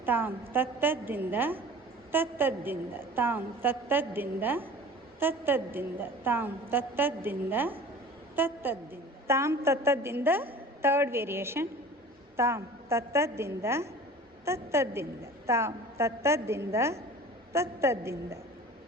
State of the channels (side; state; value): both; normal; correlation 0.41